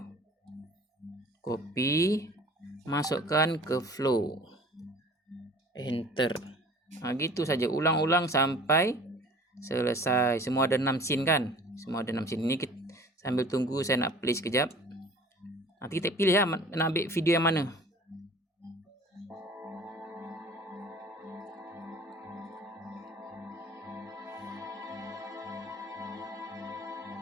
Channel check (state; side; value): normal; both; correlation 0.46